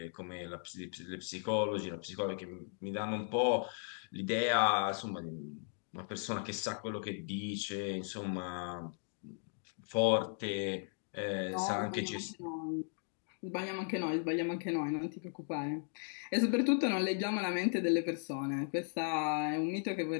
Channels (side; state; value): right; silent; 53 dB below the other